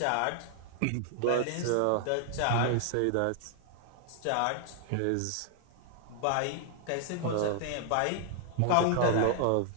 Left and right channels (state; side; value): different; both; correlation 0.00